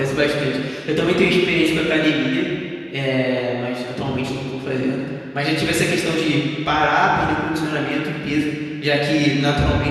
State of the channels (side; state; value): both; identical; correlation 1.00